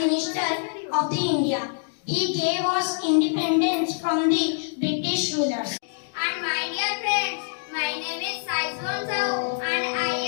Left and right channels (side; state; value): right; silent; 62 dB below the other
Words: of the India. He gave us independence from the British rulers. And my dear friends, my name is Saizwan Sao and I